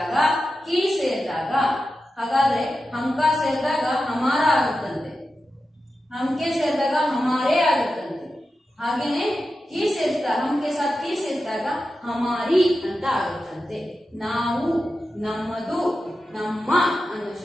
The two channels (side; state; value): both; normal; correlation 0.91